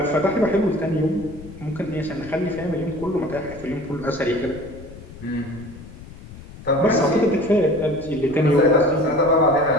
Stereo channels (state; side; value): noise; left; rumble, 16 dB below the sound